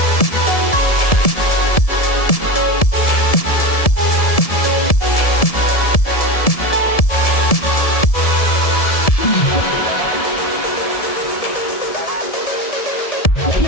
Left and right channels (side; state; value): right; late; 1.7 ms